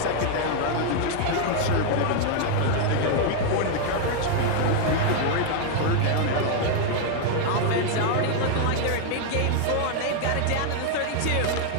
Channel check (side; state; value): both; different; correlation 0.00